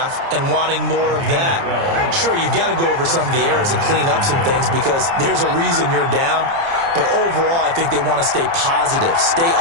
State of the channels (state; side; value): late; left; 30 ms